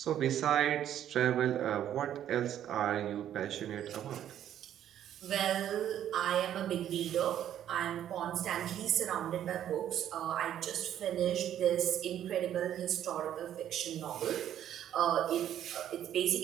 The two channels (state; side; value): quieter; left; 10.8 dB